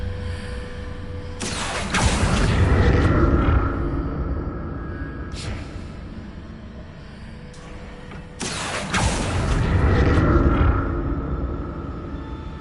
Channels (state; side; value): identical; both; correlation 1.00